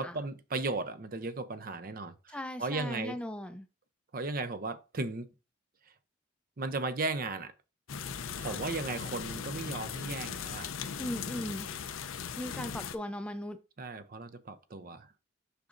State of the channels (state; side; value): normal; both; correlation 0.27